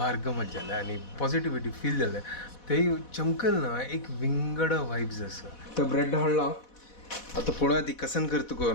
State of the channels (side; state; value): right; late; 4.1 ms